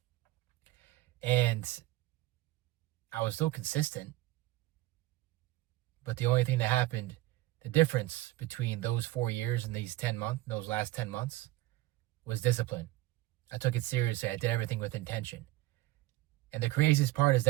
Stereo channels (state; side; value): quieter; left; 17.9 dB